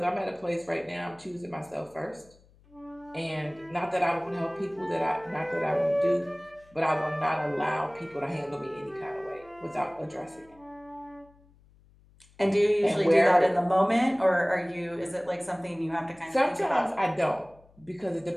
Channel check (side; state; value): left; noise; hum, 29 dB below the sound